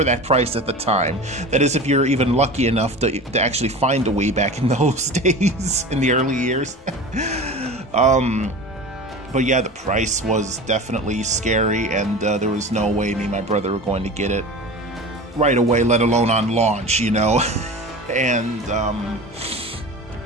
that price at the time. That is, if you're even lucky enough to actually find a Wii back in those days, in the early years. But yeah, the price was definitely scary, and there was no way me and my brother were going to get it right away, let alone on launch, you know. And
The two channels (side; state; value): both; normal; correlation 0.33